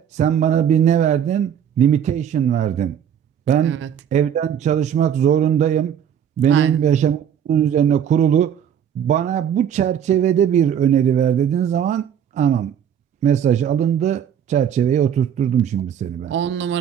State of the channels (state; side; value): quieter; left; 8.9 dB